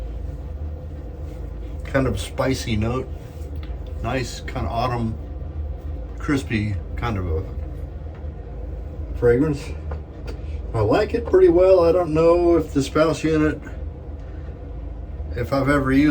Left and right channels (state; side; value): identical; both; correlation 1.00